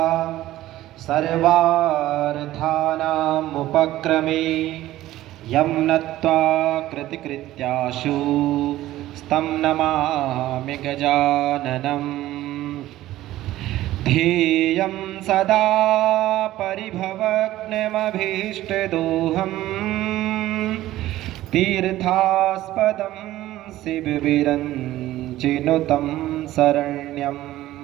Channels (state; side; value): quieter; left; 15.1 dB